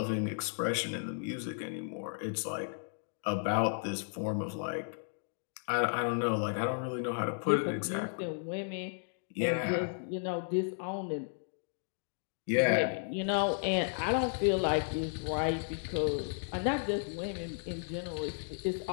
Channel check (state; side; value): silent; right; digital silence